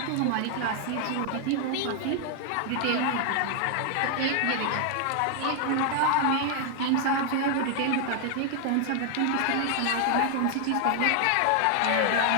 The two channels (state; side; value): different; both; correlation 0.00